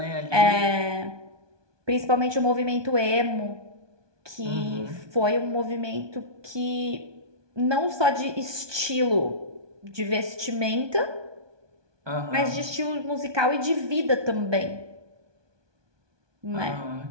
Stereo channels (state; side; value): late; left; 1.2 ms